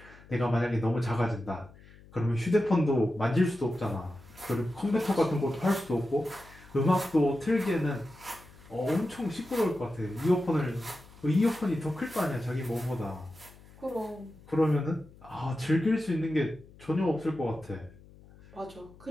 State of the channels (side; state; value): left; noise; hum, 23 dB below the sound